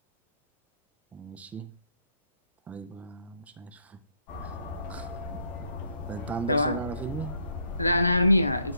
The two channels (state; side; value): inverted; both; correlation -0.71